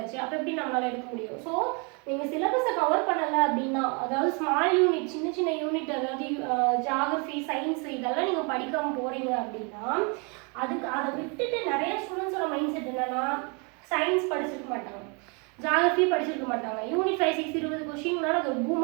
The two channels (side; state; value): left; quieter; 33.7 dB